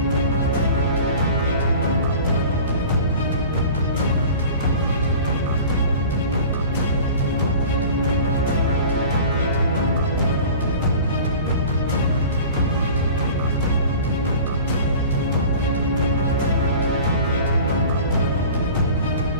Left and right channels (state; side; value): inverted; both; correlation -0.40